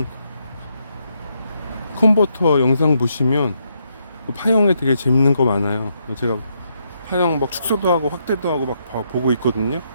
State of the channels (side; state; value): both; inverted; correlation -0.78